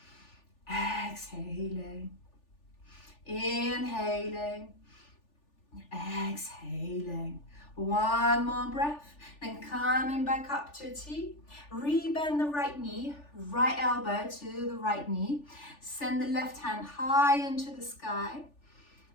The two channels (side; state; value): right; late; 3.4 ms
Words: exhaling, inhaling, exhaling. One more breath, then coming back up to a T. Rebend the right knee, right elbow to the right knee. Send the left hand high into the sky